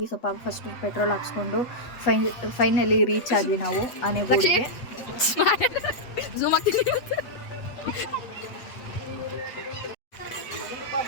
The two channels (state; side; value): late; right; 8.1 ms